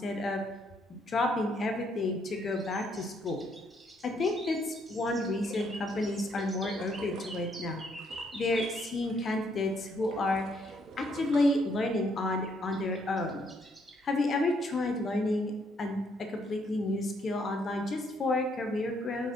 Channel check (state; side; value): normal; both; correlation 0.71